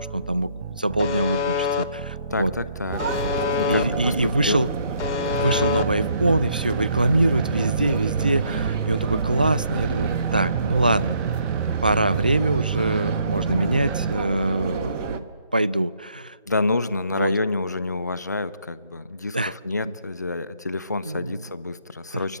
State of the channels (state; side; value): inverted; both; correlation -0.67